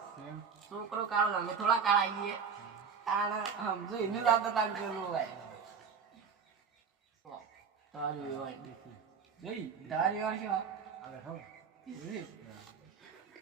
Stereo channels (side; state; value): left; quieter; 6.2 dB